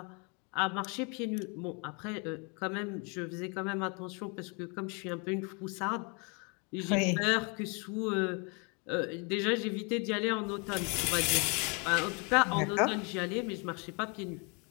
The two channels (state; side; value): quieter; right; 33.8 dB